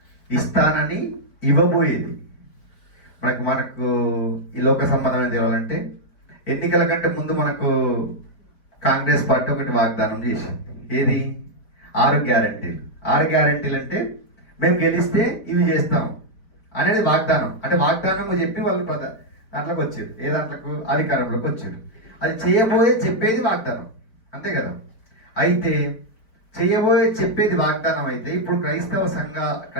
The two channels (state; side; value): late; right; 4.5 ms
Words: ఇస్తానని ఇవ్వబోయేది. మనకు ఈ లోక సంబంధమైన తెలియాలంటే ఎన్నికల కంటే ముందు మనకు కాంగ్రెస్ పార్టీ ఒకటి వాగ్దానం చేసింది. ఏది? 6 గ్యారంటీలు. 6 గ్యారంటీలు అంటే మేము గెలిస్తే ఇవి చేస్తాం అనేది వాగ్దానం. అంటే వాగ్దానం చెప్పి వాళ్ళు దాంట్లోకి వచ్చారు. ఏ దాంట్లోకి? అధికారంలోకి వచ్చారు. అది చెప్పేది వాగ్దానం, అంతే కదా. అయితే చెప్పేది వాగ్దానం అయితే ఇప్పుడు